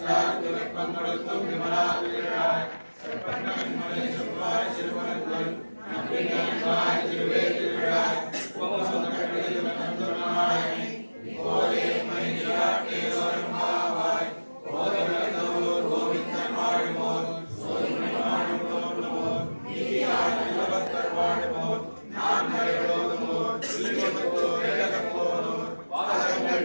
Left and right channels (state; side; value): inverted; both; correlation -1.00